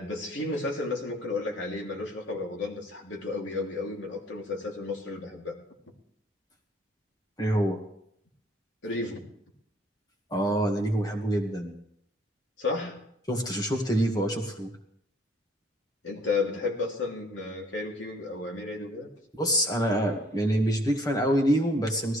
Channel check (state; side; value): normal; both; correlation 0.60